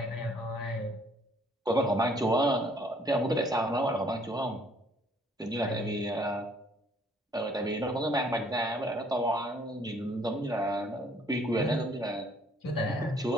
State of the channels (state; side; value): normal; both; correlation 0.62